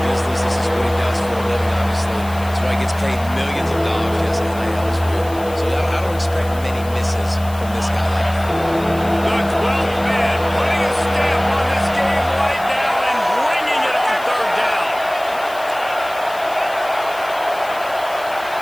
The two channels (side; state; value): left; noise; hiss, 19 dB below the sound